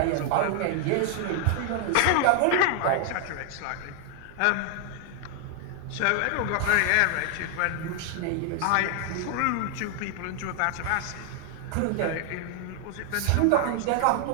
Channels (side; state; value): both; different; correlation 0.00